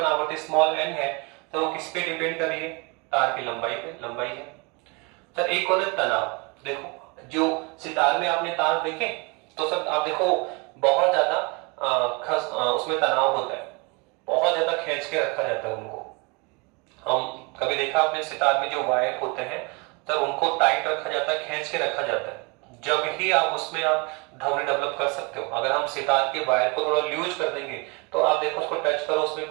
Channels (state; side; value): quieter; left; 29.7 dB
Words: आवृत्ति स्मॉल n है तो वो किस पे डिपेंड कर रही है? तार की लंबाई पे, लंबाई है सर। एक और तनाव, देखो जो सितार में आपने तार देखे तो सर आप देखो बहुत ज्यादा उसमें तनाव होता है, बहुत ज्यादा खींच के रखा जाता है उनको। हम कभी देखा आपने सितार में जो वायर होते हैं सर, उनको टाइट रखा जाता है, खींच के रखा जाता है, जब ही आप उसमें आप ध्वनि डेवलप कर सकते हो। अगर हम सितार के वायर को थोड़ा लूज कर देंगे तो आप देखो उसको टच करो, उसमें